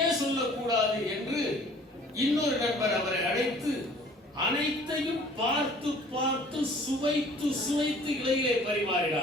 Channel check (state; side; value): normal; both; correlation 0.52